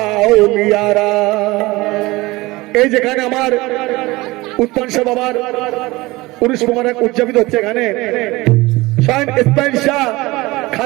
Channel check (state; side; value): quieter; left; 21.0 dB